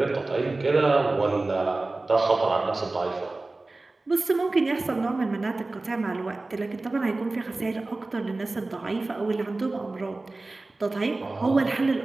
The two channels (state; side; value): quieter; left; 3.2 dB